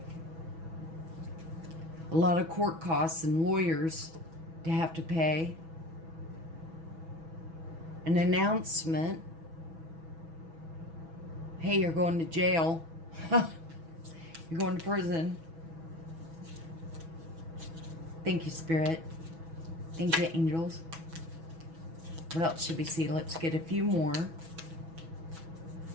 A lot of court costs and lawyers to have to pay. An announcement. Hey, you're going to jail. You're going to prison. Thank you, Spirit. Thank you, angels. What else should we see? Let's get a few more.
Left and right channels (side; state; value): left; late; 6.1 ms